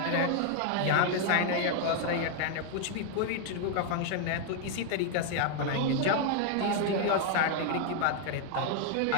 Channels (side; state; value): both; different; correlation 0.00